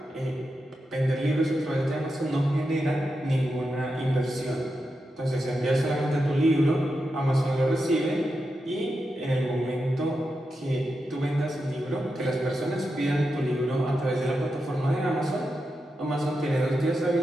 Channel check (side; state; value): both; normal; correlation 0.88